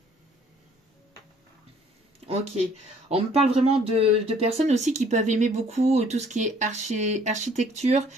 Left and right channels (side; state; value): both; normal; correlation 0.58